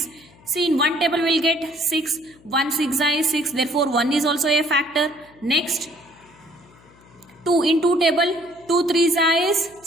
See, in one table we will get 6. 1 6 is 6. Therefore, 1 is also a factor. Next, 2 in 2 table. 2 3s is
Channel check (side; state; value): left; noise; hum, 27 dB below the sound